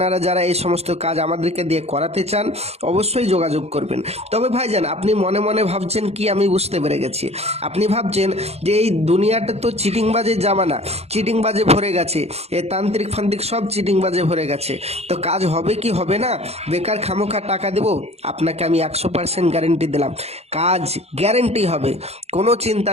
যারা এই সমস্ত কাজ আমাদেরকে দিয়ে করাতে চান অবশ্যই যোগাযোগ করবেন। তবে ভাইজান, আপনি মনে মনে ভাবছেন কি, আমি বুঝতে পেরে গেছি, আপনি ভাবছেন যে এই দুনিয়াটা তো চিটিংবাজের জামানা, চিটিংবাজে ভরে গেছে, এ তান্ত্রিক ফান্ত্রিক সব চিটিংবাজে ভরে গেছে, তো কাজ হবে কি হবে না, বেকার খামোখা টাকা দেবো? আপনাকে আমি 100% গ্যারেন্টি দিলাম, কাজ গ্যারেন্টি হবে, কোনো চিন্তা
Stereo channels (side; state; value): left; late; 0.30 ms